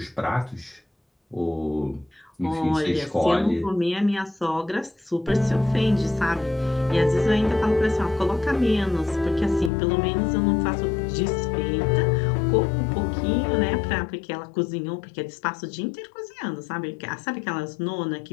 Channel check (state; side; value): drops out; right; at 9.7 s